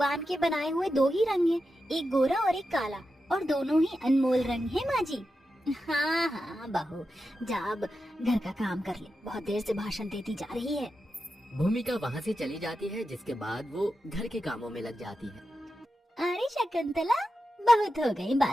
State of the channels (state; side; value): normal; both; correlation 0.90